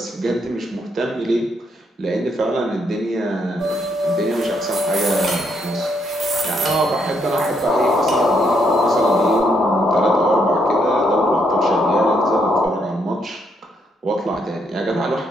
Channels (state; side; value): normal; both; correlation 0.74